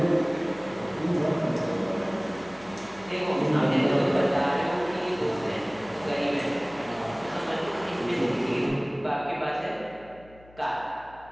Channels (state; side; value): noise; left; hum, 24 dB below the sound